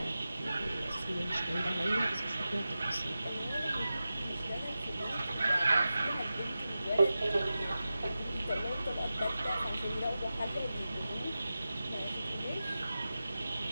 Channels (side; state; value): both; inverted; correlation -0.93